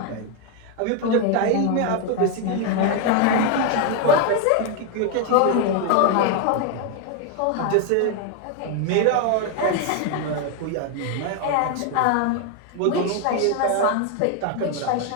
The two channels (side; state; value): both; different; correlation 0.01